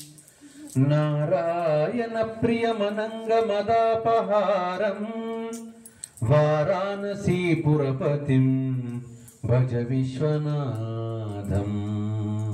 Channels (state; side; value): identical; both; correlation 1.00